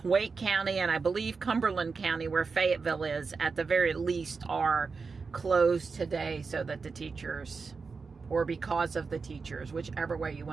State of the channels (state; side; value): quieter; left; 4.8 dB